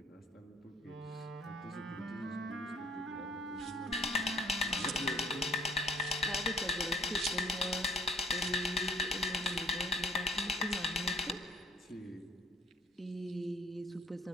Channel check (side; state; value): both; normal; correlation 0.59